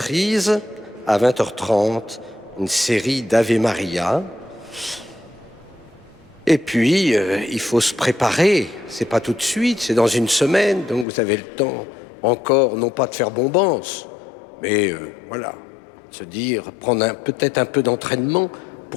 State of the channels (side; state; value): right; drops out; at 11.1 s